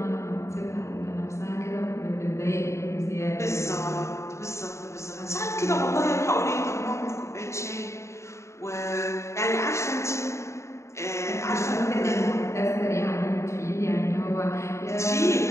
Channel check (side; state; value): right; late; 0.14 ms